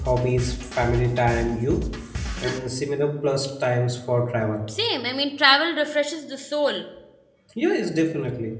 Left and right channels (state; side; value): identical; both; correlation 1.00